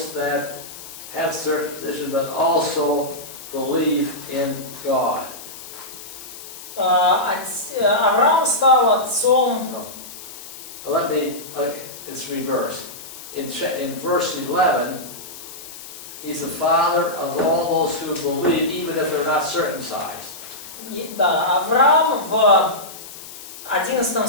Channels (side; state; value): left; noise; hiss, 14 dB below the sound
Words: that have circumcision but also believe in God. Авраам стал отцом. It's reversed. In verse 11, he's the father of all those who believe, even if they're not circumcised. Да, Авраам в 11